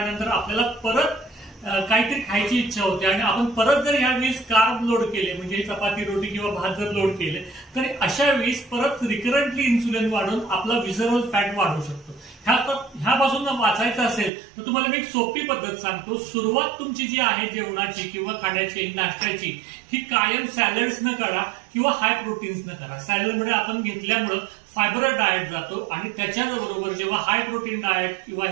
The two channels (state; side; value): drops out; left; at 14.3 s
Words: आपल्याला परत काहीतरी खायची इच्छा होते आणि आपण परत जर यावेळेस कार्ब लोड केले म्हणजे चपाती, रोटी किंवा भात जर लोड केले तर अशा वेळेस परत रिकरंटली इन्सुलिन वाढून आपला विसरल फॅट वाढू शकतो. ह्यापासून वाचायचं असेल तर तुम्हाला मी एक सोपी पद्धत सांगतो. सुरुवात तुमची जी आहे जेवणाची किंवा खाण्याची, नाश्त्याची ही कायम सॅलड्स न करा किंवा हाय प्रोटीन्स न करा. सॅलडमध्ये आपण घेतल्यामुळं फायबर डाएट जातो आणि त्याच्याबरोबर जेव्हा हाय प्रोटीन डाएट किंवा